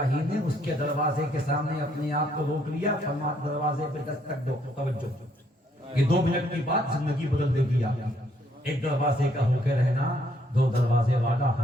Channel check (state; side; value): normal; both; correlation 0.69